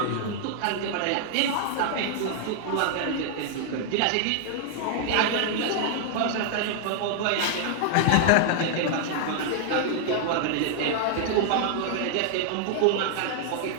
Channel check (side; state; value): both; different; correlation 0.00